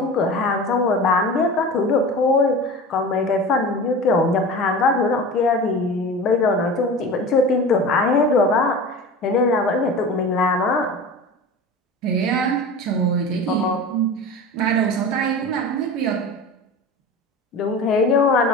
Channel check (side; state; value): both; normal; correlation 0.33